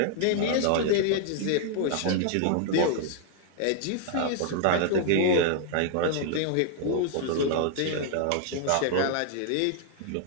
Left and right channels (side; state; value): both; different; correlation 0.00